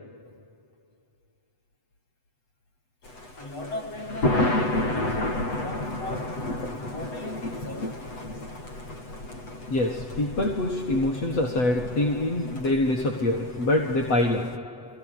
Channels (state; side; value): late; right; 8.0 ms